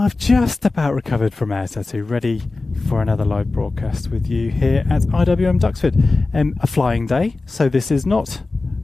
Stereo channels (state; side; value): quieter; right; 3.5 dB